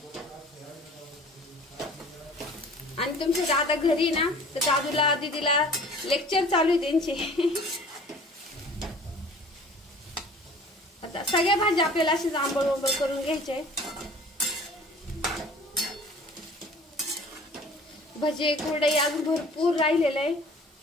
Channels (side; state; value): both; normal; correlation 0.47